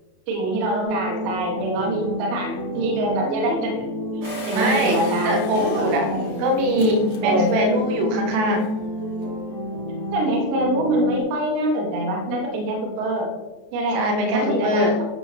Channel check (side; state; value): left; late; 32 ms